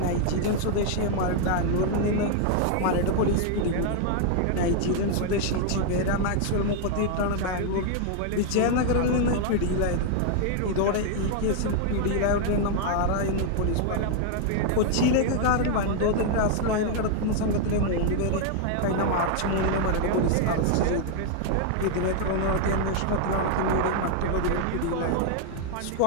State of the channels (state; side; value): different; both; correlation 0.00